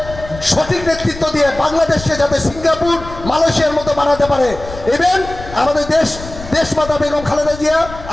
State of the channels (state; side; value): noise; left; rumble, 13 dB below the sound